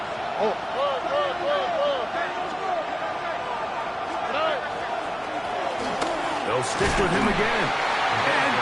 Oh. They'll stick with him again. And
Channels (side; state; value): both; identical; correlation 1.00